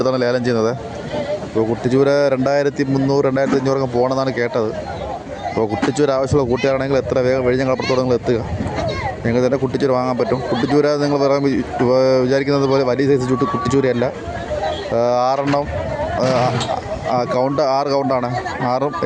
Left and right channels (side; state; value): both; identical; correlation 1.00